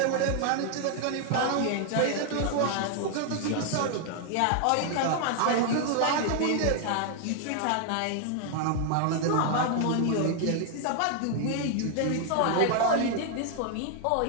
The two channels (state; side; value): different; both; correlation 0.00